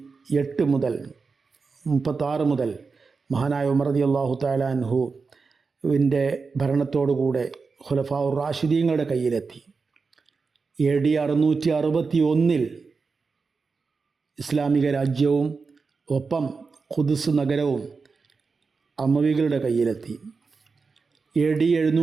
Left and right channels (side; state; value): left; quieter; 4.7 dB